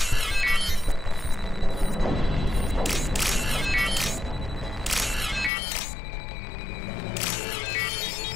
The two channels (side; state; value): right; drops out; at 5.5 s